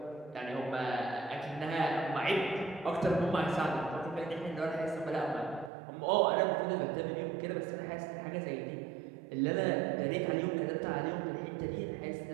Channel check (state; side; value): drops out; left; at 5.7 s